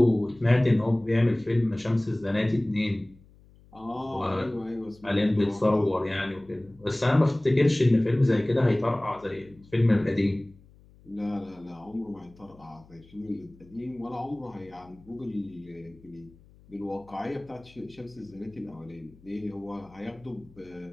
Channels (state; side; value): noise; left; hum, 26 dB below the sound